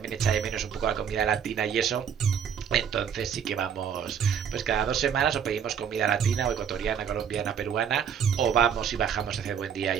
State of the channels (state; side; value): quieter; left; 7.8 dB